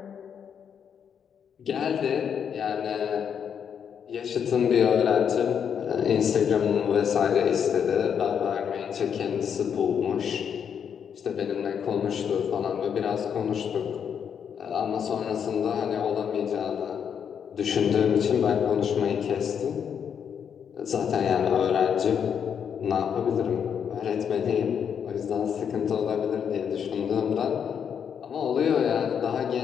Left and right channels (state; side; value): quieter; right; 7.7 dB